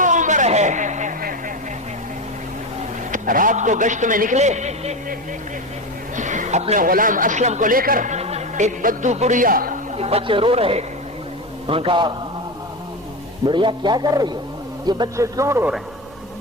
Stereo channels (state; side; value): normal; both; correlation 0.19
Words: عمر ہے. رات کو گشت میں نکلے اپنے غلام اسلم کو لے کر. ایک بدو بڑھیا بچے رو رہے. ان کا بڑھیا کیا کر رہی ہے, یہ بچے کیوں رو رہے